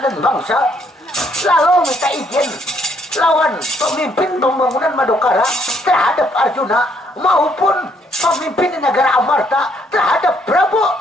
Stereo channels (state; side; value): normal; both; correlation 0.69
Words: bangsa. Lalu minta izin lawan pemimpin pembangunan Madukara terhadap Arjuna maupun pemimpin negara Amarta terhadap Prabu